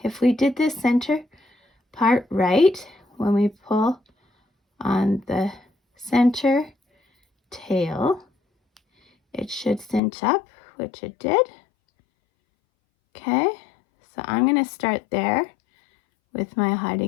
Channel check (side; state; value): right; drops out; at 10.0 s